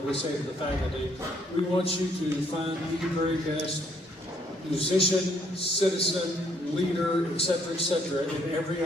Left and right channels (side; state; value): both; normal; correlation 0.68